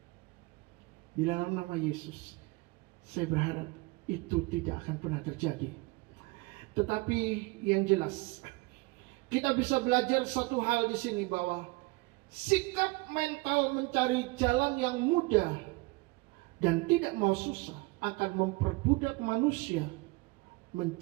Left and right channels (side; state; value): left; quieter; 24.4 dB